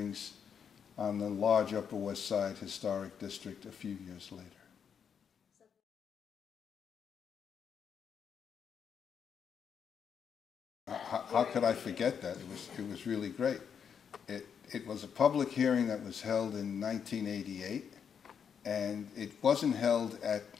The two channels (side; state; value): right; quieter; 7.3 dB